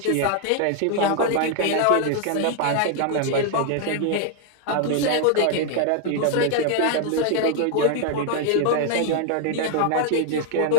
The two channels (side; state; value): both; different; correlation 0.00